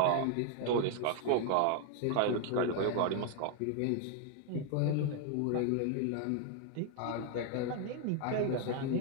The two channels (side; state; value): both; different; correlation 0.00